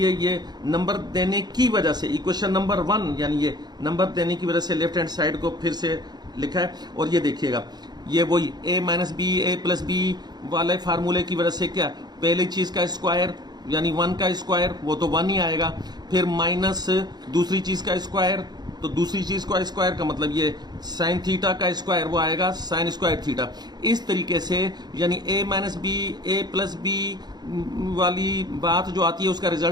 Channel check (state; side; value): late; left; 0.20 ms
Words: ये नंबर देने की वजह से इक्वेशन नंबर 1 यानी ये नंबर देने की वजह से लेफ्ट हैंड साइड को फिर से लिखा है। और ये देखिएगा, ये वही a minus b a plus b वाले फार्मूले की वजह से क्या, पहली चीज का स्क्वायर यानी 1 का स्क्वायर वो तो 1 ही आएगा, फिर माइनस दूसरी चीज का स्क्वायर, तो दूसरी चीज का स्क्वायर का मतलब ये साइन थीटा का स्क्वायर वो आएगा साइन स्क्वायर थीटा। इस तरीके से यानी a minus b a plus b वाली बात जो आती है उसका